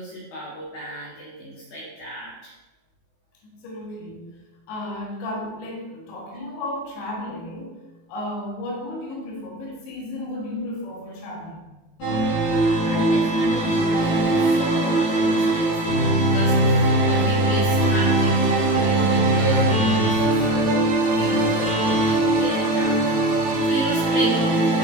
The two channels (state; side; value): late; right; 19 ms